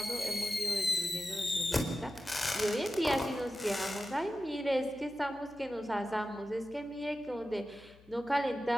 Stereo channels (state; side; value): noise; left; hum, 25 dB below the sound